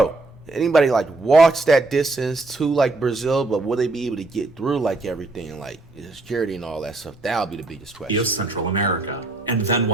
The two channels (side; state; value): left; quieter; 3.1 dB